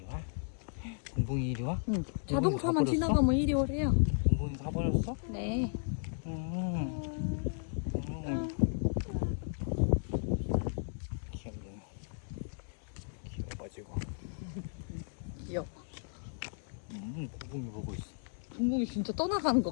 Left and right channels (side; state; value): right; silent; 55 dB below the other